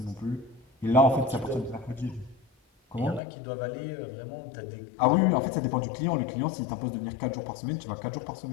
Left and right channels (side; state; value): right; drops out; at 3.2 s